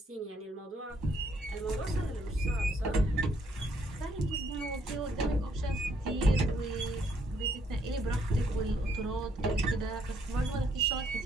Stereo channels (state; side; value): normal; both; correlation 0.70